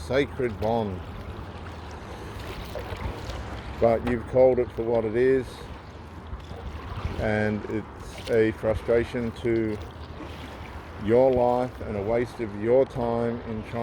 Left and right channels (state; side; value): identical; both; correlation 1.00